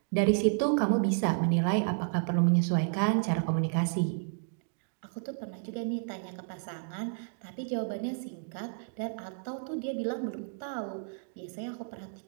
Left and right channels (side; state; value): left; silent; digital silence